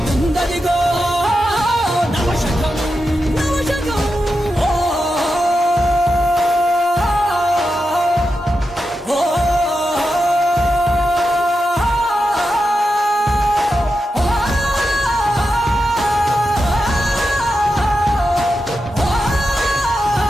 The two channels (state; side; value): normal; both; correlation 0.89